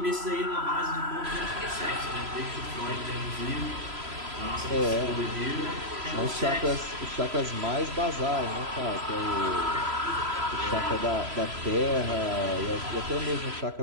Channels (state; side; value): late; left; 3.0 ms